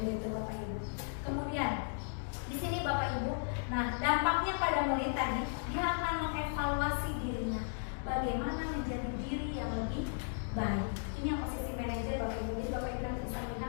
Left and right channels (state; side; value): silent; right; digital silence